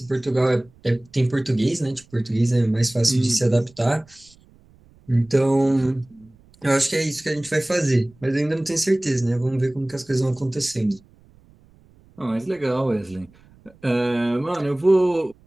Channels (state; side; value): noise; right; rumble, 29 dB below the sound